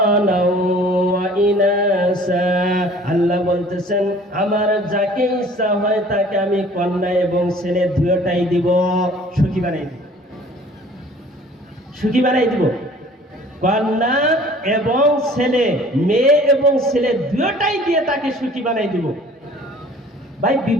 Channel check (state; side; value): normal; both; correlation 0.50